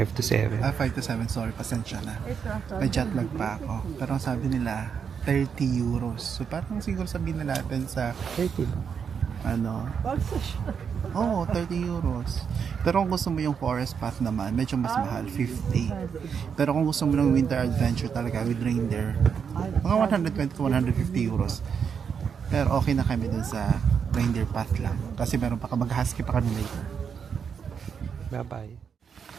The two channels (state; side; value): quieter; left; 6.8 dB